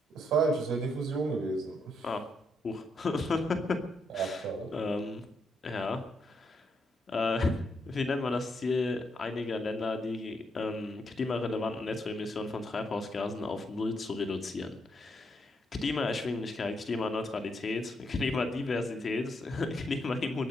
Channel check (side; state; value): both; normal; correlation 0.78